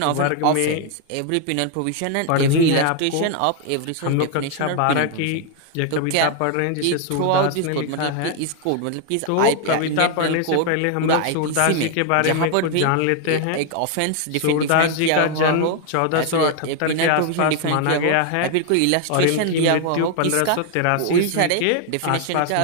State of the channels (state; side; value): different; both; correlation 0.00